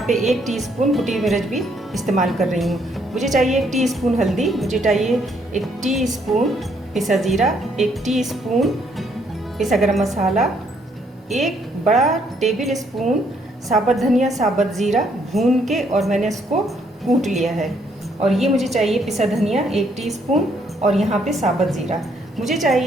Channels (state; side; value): normal; both; correlation 0.70